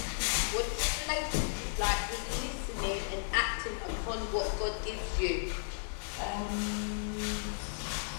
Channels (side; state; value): right; silent; digital silence